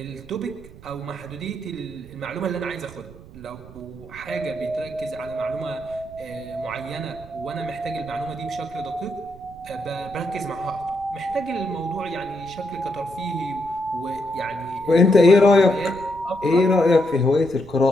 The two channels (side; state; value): right; noise; rumble, 19 dB below the sound